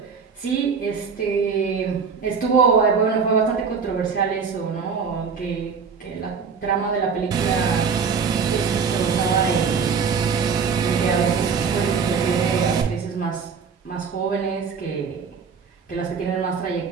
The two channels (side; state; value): left; quieter; 5.8 dB